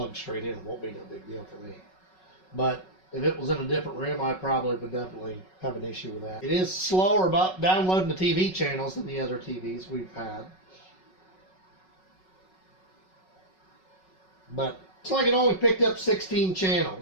straight in. It won't be no big deal for me. But if it was in a different room, I probably would definitely have an issue with that. It is slower about downloading the TV channels than the other TVs we've had. But it's like it only picked up 16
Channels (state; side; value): late; right; 5.4 ms